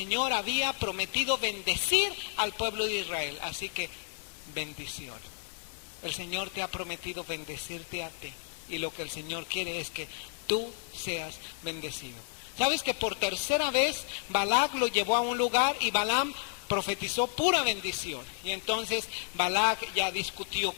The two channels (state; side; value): silent; right; 57 dB below the other